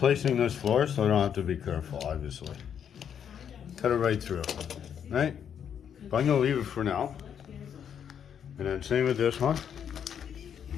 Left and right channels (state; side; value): quieter; right; 8.3 dB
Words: this floor, so I don't have to be careful, obviously. Cut it right through, right? But I'm gonna leave it for now. And then same with this one,